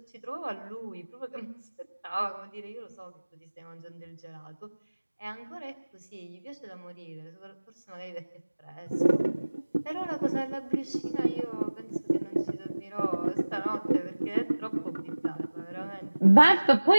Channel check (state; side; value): inverted; both; correlation -1.00